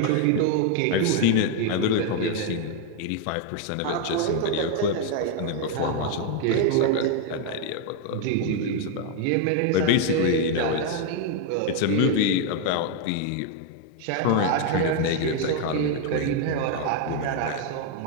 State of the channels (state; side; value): different; both; correlation 0.01